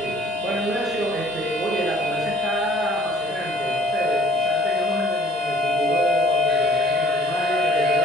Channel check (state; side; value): normal; both; correlation 0.55